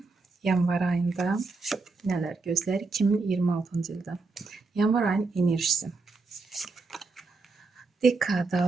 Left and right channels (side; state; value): left; quieter; 3.9 dB